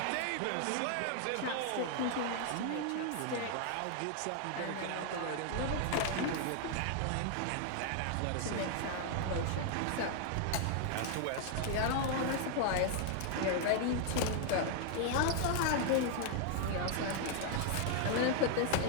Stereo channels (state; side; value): different; both; correlation 0.00